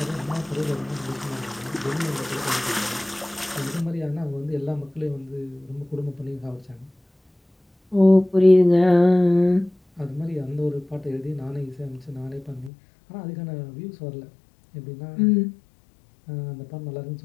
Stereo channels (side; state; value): right; drops out; at 12.7 s